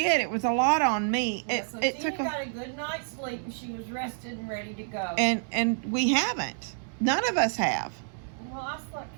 It was a lot on me. Yeah, It so it Tina took got a good night's sleep and she was rested and ready to go. and we haven't. None of us have. Well, I slept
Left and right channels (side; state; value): left; silent; digital silence